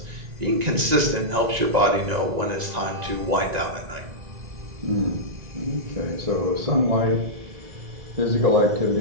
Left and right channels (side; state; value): left; late; 1.9 ms